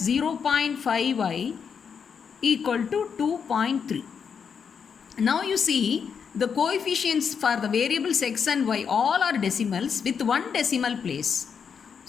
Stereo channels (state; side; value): quieter; right; 6.7 dB